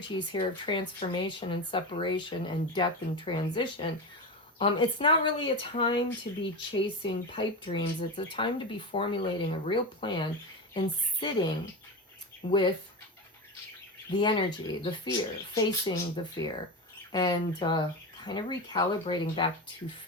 here of transformation and separation and death and transition, it's not really a time to be chasing pipe dreams. It's a time to be formulating a real plan and sitting with the energy, the fear, facing the fear, and kind of recalibrating back to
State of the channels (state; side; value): normal; both; correlation 0.21